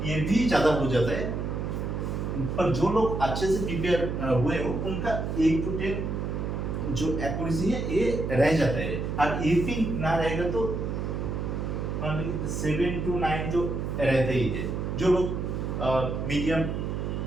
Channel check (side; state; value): right; noise; hum, 2 dB below the sound